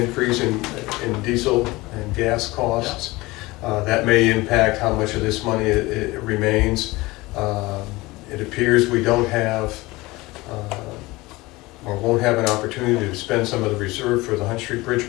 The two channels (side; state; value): right; quieter; 21.2 dB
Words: in diesel and gas costs. That may impact how much of this money it remains. It appears we don't have, or won't have an opportunity to spend some of the reserve for the Hunt Street